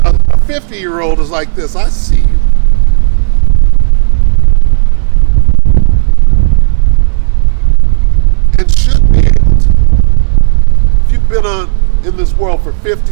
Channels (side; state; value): left; silent; digital silence